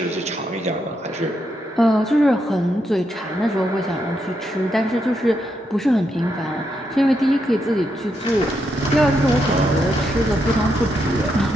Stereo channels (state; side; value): normal; both; correlation 0.81